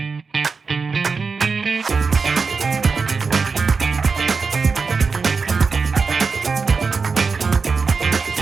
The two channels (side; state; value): left; quieter; 4.8 dB